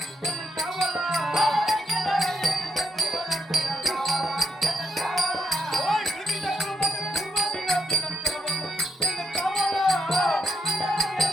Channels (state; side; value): normal; both; correlation 0.77